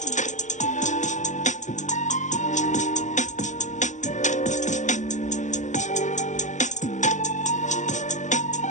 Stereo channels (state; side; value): late; right; 0.35 ms